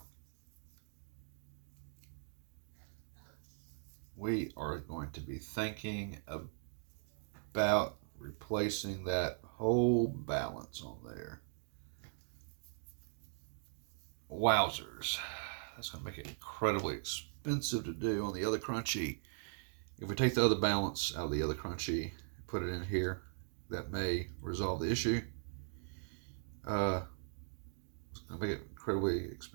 we are going to be thinking about replacing that whole balance on there. Wowzers. That's going to make it incredibly expensive to do on the other crunchy. If we take the other balance out of the other crunchy, put it in here, that may resolve the issue. It's going to make it incredibly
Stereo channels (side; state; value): left; silent; digital silence